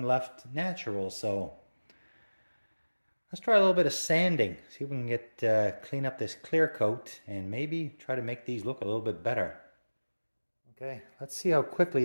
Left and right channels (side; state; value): both; inverted; correlation -1.00